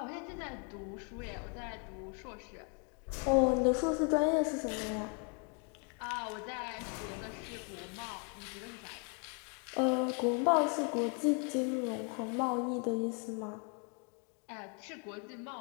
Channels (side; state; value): right; quieter; 38.3 dB